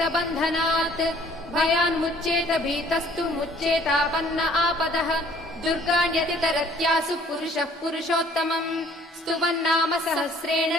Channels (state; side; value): normal; both; correlation 0.57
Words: बन्धनात् भयान्मुच्येत भीतस्तु मुच्येतापन्न आपदः दुर्गाण्यतितरत्यासु पुरुषः पुरुषोत्तमम् स्तुवन्नाम सहस्रेण